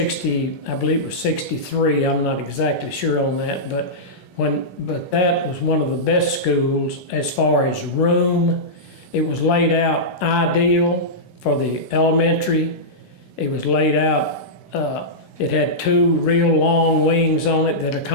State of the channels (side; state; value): right; late; 10 ms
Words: I believe it was 63. I'm not exactly sure on that, but that was one of the best schools as far as room. It was laid out ideal for the elementary. It was laid out, it had 2 real long wings on it that